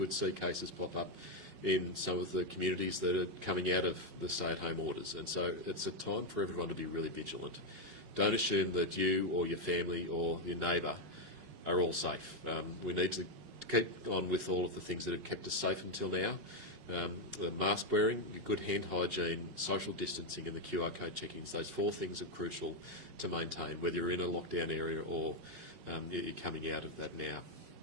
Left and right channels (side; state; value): left; late; 5.4 ms